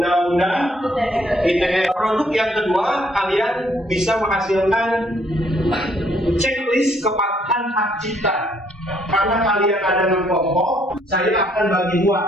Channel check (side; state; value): both; normal; correlation 0.67